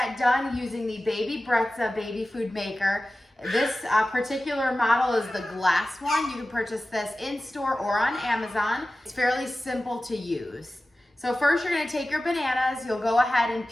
done using the Baby Brezza baby food maker. This particular model is the glass one. You can purchase this in store or on Amazon. It's fairly simple to use. So first you're going to take your bananas, you'll go ahead and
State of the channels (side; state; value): both; normal; correlation 0.95